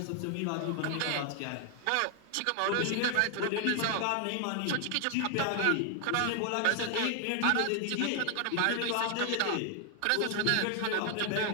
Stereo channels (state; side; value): different; both; correlation 0.00